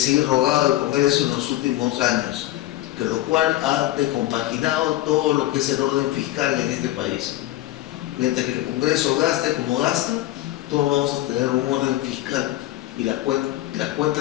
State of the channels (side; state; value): right; quieter; 15.6 dB